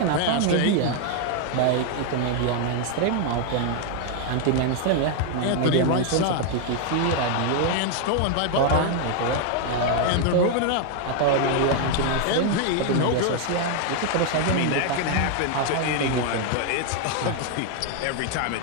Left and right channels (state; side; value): different; both; correlation 0.00